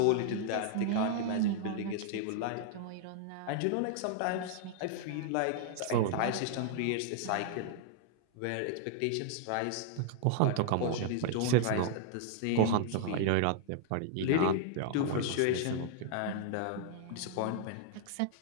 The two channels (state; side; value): different; both; correlation 0.00